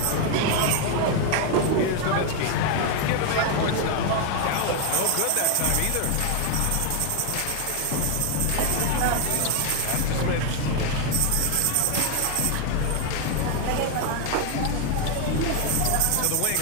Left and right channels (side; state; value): both; different; correlation 0.01